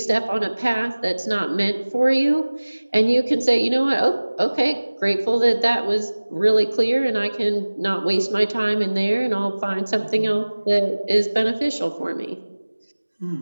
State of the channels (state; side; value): inverted; both; correlation -1.00